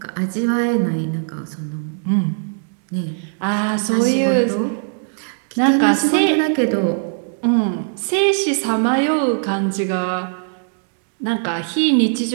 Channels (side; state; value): left; silent; digital silence